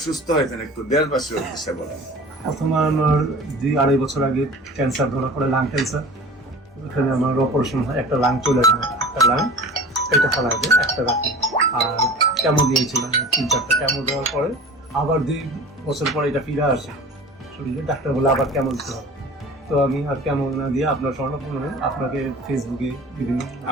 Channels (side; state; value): both; normal; correlation 0.40